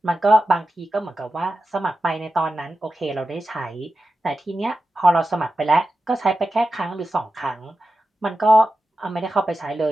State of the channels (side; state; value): both; normal; correlation 0.92